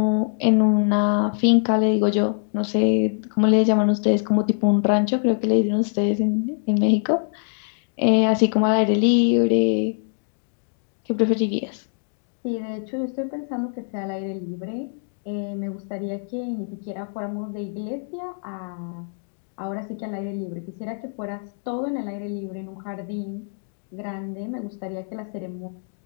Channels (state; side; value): silent; right; digital silence